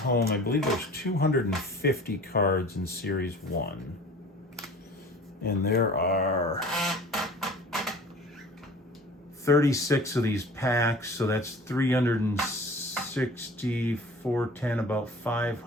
I believe there's 250 cards in Series 1. And there are 36 of these packs, so that's 360, 410, about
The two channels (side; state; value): both; normal; correlation 0.43